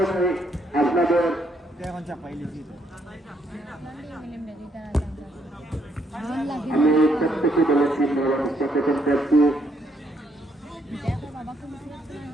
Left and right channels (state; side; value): normal; both; correlation 0.72